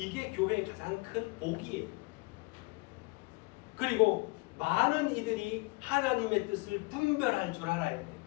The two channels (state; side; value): quieter; right; 26.6 dB